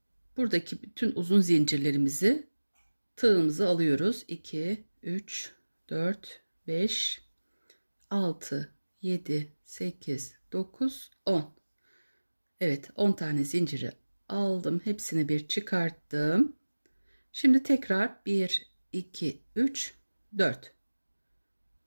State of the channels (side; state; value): both; inverted; correlation -1.00